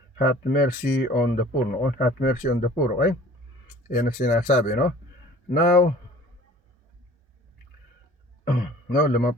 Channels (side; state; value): both; normal; correlation 0.48